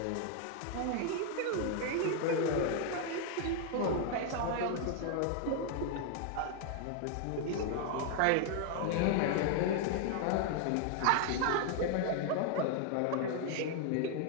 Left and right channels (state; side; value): different; both; correlation 0.00